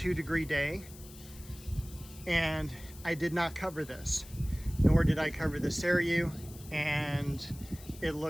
day, and I did not cover this, nor did I cover the Seryu, and it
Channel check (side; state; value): left; noise; hiss, 19 dB below the sound